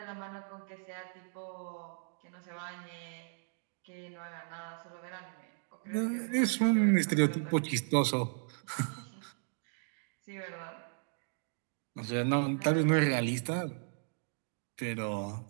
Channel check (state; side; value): silent; left; digital silence